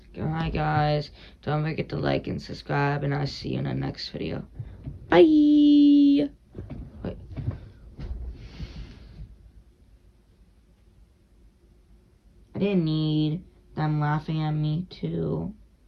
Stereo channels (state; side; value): identical; both; correlation 1.00